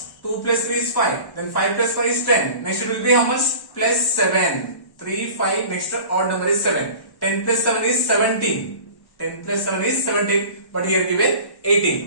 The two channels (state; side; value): late; right; 1.1 ms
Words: 2 plus 3 is 5. Then 5 plus 5 is 10. Next it will be how much? Plus 7. 3, 5, next odd number is 7. 10 plus 7 is 17. 10 plus 7 is 17. But here given